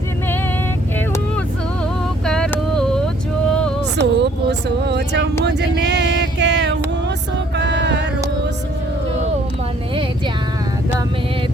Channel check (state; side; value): normal; both; correlation 0.62